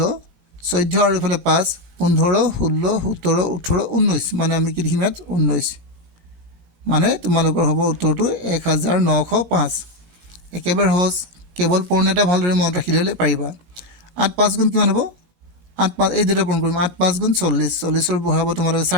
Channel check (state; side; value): late; left; 18 ms